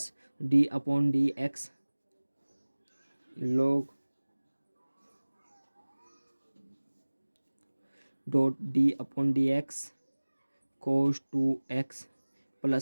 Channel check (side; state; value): both; inverted; correlation -1.00